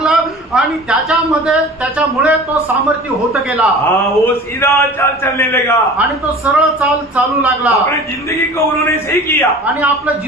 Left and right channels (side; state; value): both; normal; correlation 0.40